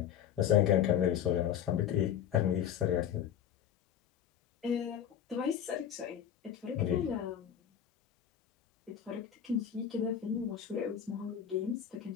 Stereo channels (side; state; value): right; quieter; 9.4 dB